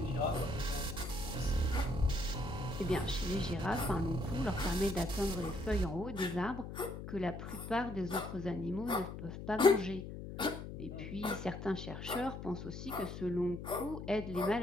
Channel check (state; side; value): noise; left; hum, 9 dB below the sound